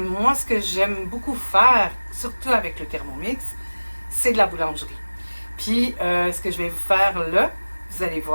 moi, ce que j'aime beaucoup faire, surtout avec le Thermomix, c'est de la boulangerie. Puis, ce que je vais vous faire là, vous allez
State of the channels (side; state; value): both; inverted; correlation -1.00